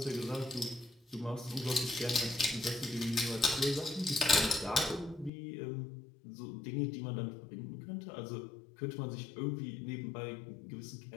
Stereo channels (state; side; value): drops out; right; at 5.3 s